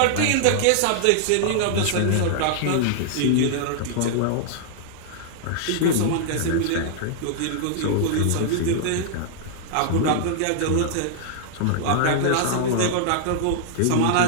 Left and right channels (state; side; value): different; both; correlation -0.01